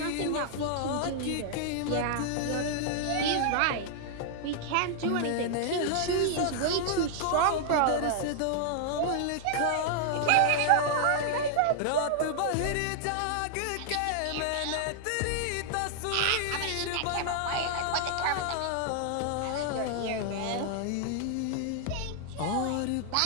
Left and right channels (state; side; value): different; both; correlation -0.01